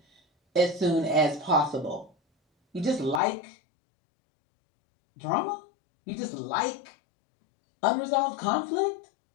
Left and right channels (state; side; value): drops out; right; at 3.2 s